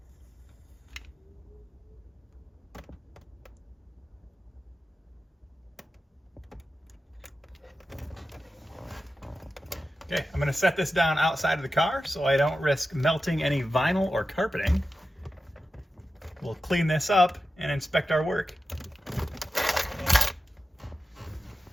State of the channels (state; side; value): normal; both; correlation 0.92